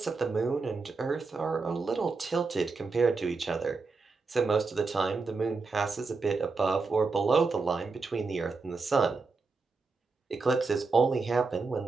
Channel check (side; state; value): left; quieter; 4.2 dB